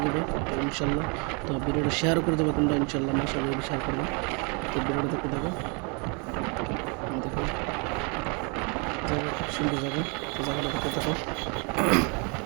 দেবে তো ইনশাল্লাহ। তো ভিডিওটা শেয়ার করে দেবো তোমরা ইনশাল্লাহ, মাশাআল্লাহ শেয়ার করবে। তো ভিডিওটা দেখতে থাকো, দেখো জায়গা খুব সুন্দর জায়গা। তো জায়গাটা দেখতে থাকো,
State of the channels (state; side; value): quieter; left; 33.5 dB